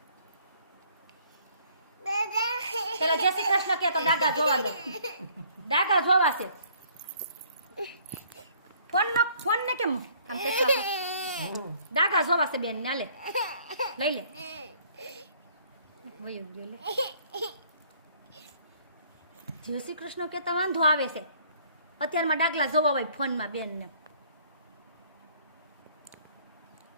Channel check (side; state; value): both; inverted; correlation -0.60